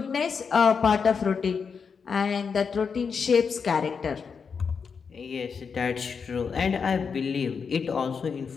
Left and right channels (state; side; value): quieter; right; 5.9 dB